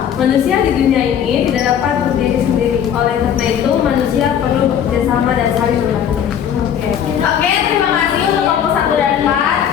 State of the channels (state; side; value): quieter; right; 9.0 dB